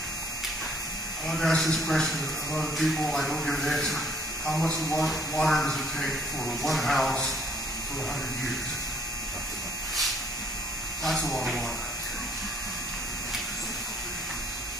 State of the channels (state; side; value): normal; both; correlation 0.62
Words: want to ask this question of other people. I don't get an answer. How much water does it take for one house for 100 years? That's a lot of water.